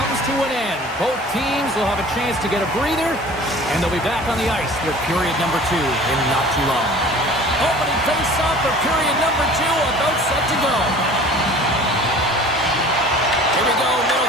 to an end. Both teams will have a chance to get a breather, and they'll be back on the ice with period number 2 in not too long. Opening face-off for period number 2, about set to go. Here we go,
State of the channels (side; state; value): both; normal; correlation 0.45